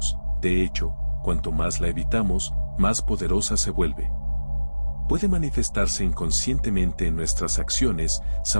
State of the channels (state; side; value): inverted; both; correlation -1.00